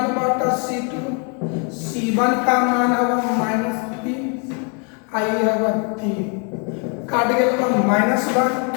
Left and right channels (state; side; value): quieter; right; 37.3 dB